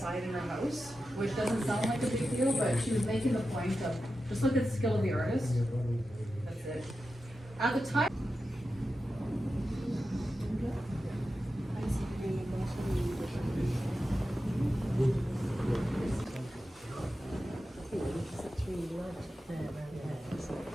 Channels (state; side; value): normal; both; correlation 0.91